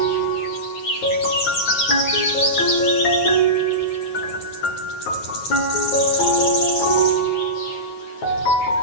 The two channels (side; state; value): right; late; 9.3 ms